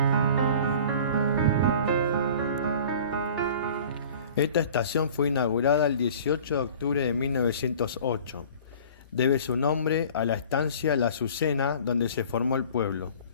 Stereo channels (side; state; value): both; inverted; correlation -0.46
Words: Esta estación fue inaugurada el 18 de octubre de 1908. Debe su nombre a la estancia La Azucena, donde se formó el pueblo.